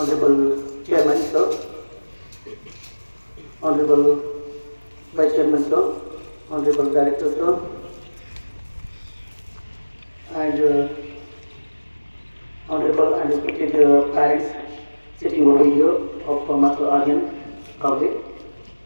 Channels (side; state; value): both; inverted; correlation -1.00